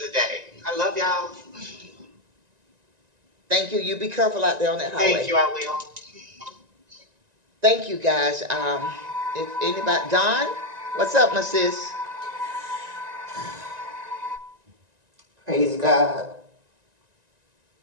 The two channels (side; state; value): left; late; 1.9 ms